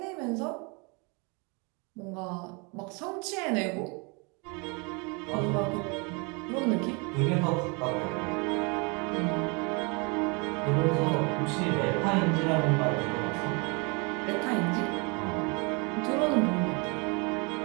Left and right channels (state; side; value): quieter; left; 31.5 dB